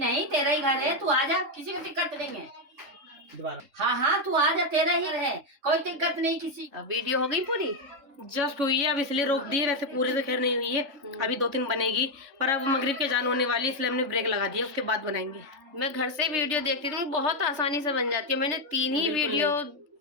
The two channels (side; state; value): left; late; 3.3 ms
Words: तेरा ही घर है, तू आ जा, किसी को दिक्कत नहीं है। दोबारा हाँ हाँ, तू आ जा, तेरा ही रहे, कोई दिक्कत नहीं किसी। अब वीडियो हो गई पूरी? जस्ट हुई है, अब इसलिए रोक दी है, वैसे पूरी तो खैर नहीं हुई है, अभी 2-3 बनेगी, पर अब मगरिब के जान होने वाली है, इसलिए हमने ब्रेक लगा दिया, उसके बाद बनाएंगे। मैं घर से वीडियो देखती थी, बहुत आसानी से बन जाती है। मैंने 3 ही वीडियो